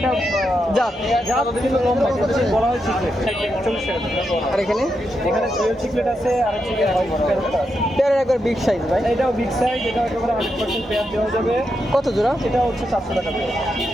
জাত কিন্তু লম্বা, বলা হয় চিকলেট। 40 টাকা জোড়া। আর এখানে ডুয়েল চিকলেট আছে, আর হচ্ছে গিয়ে প্যারটটা আছে। পেয়ারের একবার বিগ সাইজ ভাই। এটাও বিগ সাইজ, এটা একেবারে 100% পেয়ার দেওয়া যাবে। কত জোড়া? এটা হচ্ছে 700 টাকা জোড়া।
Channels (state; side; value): normal; both; correlation 0.84